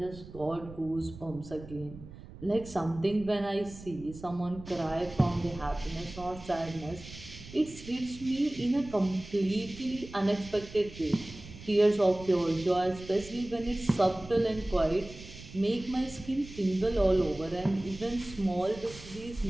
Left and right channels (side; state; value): right; noise; rumble, 16 dB below the sound